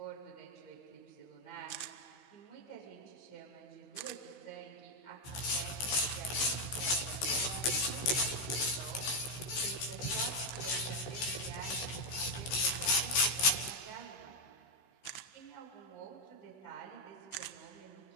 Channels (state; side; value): late; right; 16 ms